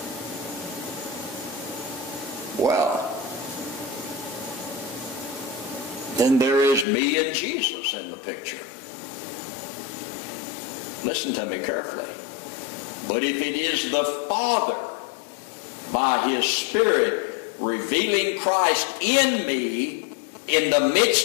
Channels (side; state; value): right; drops out; at 6.9 s